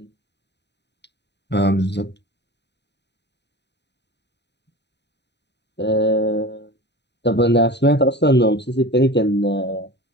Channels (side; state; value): right; late; 0.50 ms